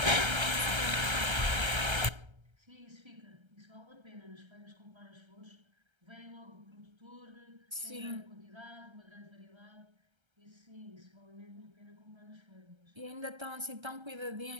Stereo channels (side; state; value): left; late; 1.3 ms